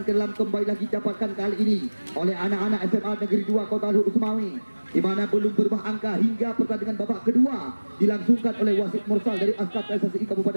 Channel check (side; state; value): both; inverted; correlation -1.00